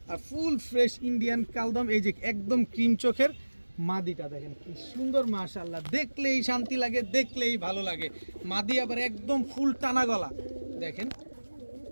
আর ফুল ফ্রেশ ইন্ডিয়ান কালদম। এই যে একদম ক্রিম চোখের মাদিটা দেখেন কি সুন্দর, মাশাআল্লাহ, দেখলেই শান্তি লাগে, দেখলেই ভালো লাগে। মাদি আবার একদম ফুল টানা গলা দেখেন,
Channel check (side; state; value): both; inverted; correlation -1.00